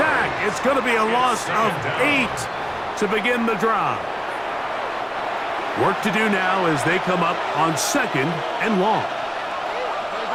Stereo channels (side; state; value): both; identical; correlation 1.00